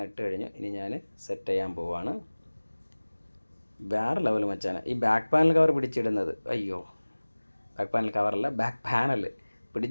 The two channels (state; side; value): inverted; both; correlation -1.00